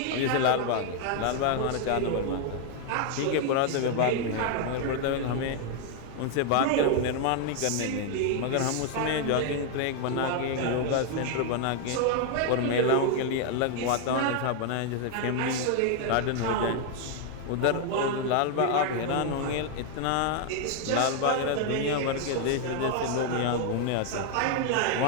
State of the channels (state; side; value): different; both; correlation 0.00